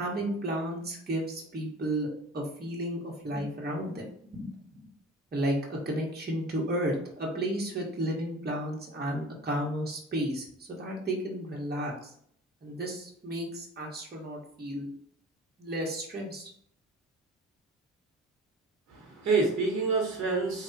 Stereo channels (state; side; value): normal; both; correlation 0.39